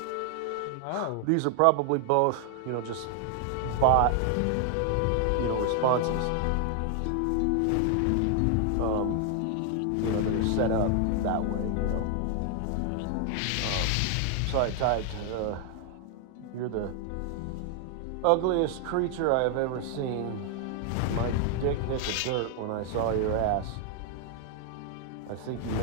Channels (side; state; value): both; different; correlation 0.00